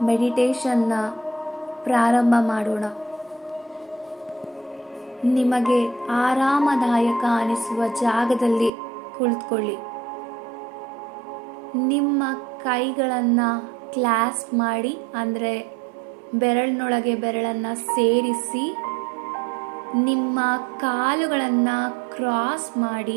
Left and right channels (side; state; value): left; drops out; at 8.7 s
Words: ಮೆಡಿಟೇಷನ್ನ ಪ್ರಾರಂಭ ಮಾಡೋಣ. ನಿಮಗೆ ಆರಾಮದಾಯಕ ಅನಿಸುವ ಜಾಗದಲ್ಲಿ ಕುಳಿತುಕೊಳ್ಳಿ. ನಿಮ್ಮ ಕೈಗಳನ್ನು ಕ್ಲಾಸ್ಪ್ ಮಾಡಿ, ಅಂದರೆ ಬೆರಳಿನೊಳಗೆ ಬೆರಳನ್ನು ಸೇರಿಸಿ, ನಿಮ್ಮ ಕಾಲುಗಳನ್ನು ಕ್ರಾಸ್